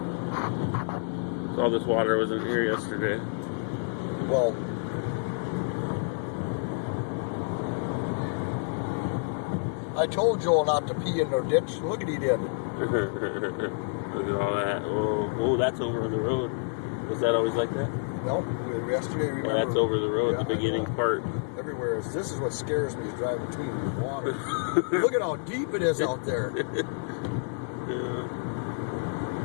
All this water wasn't here yesterday. Well, I told Joel not to pee in their ditch. Look what he did. Look at all that. Oh, that's over on the road. Was that always like that? No, yesterday, remember. Well, that's over the road, the beginning part. Everywhere. This is what scares me, is driving between the water. Look at how deep it is out there. Yeah.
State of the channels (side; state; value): right; silent; 59 dB below the other